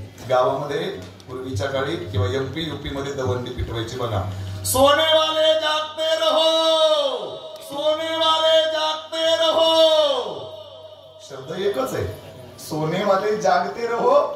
गावामध्ये पूर्वीच्या काळी किंवा MP UP मध्ये दवंडी पिटवायची बघा. सोने वाले जागते रहो, शब्द एकच आहे. सोने वाले जागते रहो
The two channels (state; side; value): identical; both; correlation 1.00